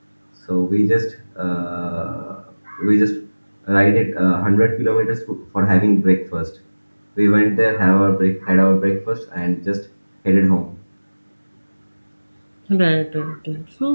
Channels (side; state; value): both; inverted; correlation -1.00